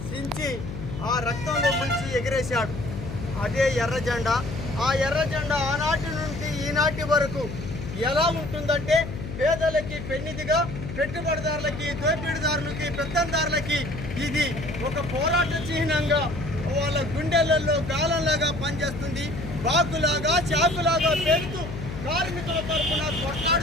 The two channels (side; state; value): left; noise; hum, 8 dB below the sound